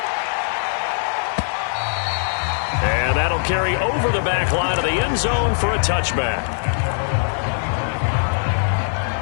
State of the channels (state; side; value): silent; right; 63 dB below the other